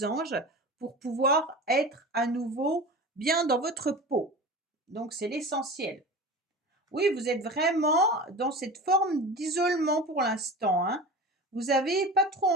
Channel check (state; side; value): normal; both; correlation 0.33